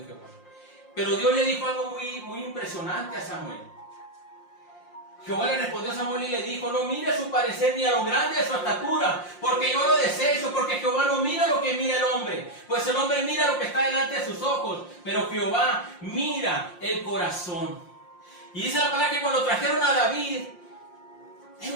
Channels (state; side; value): late; right; 5.7 ms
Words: Jehová. Pero Dios le dijo algo muy impresionante a Samuel. Jehová le respondió a Samuel y le dijo, no mire su parecer ni a lo grande de su estatura, porque yo lo desecho, porque Jehová no mira lo que mira el hombre, pues el hombre mira lo que está delante de sus ojos, pero Jehová mira el corazón. Y dice la palabra que cuando trajeron a David,